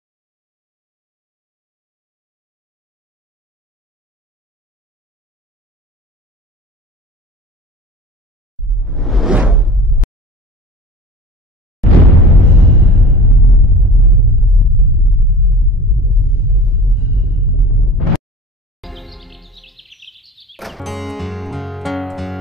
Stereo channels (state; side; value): normal; both; correlation 0.39